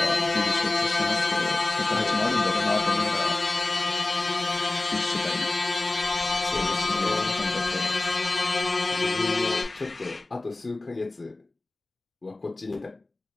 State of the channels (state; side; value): quieter; right; 3.0 dB